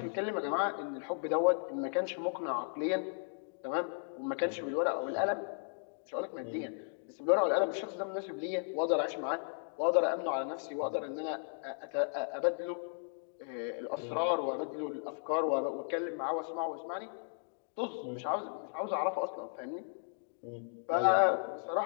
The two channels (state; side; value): silent; right; digital silence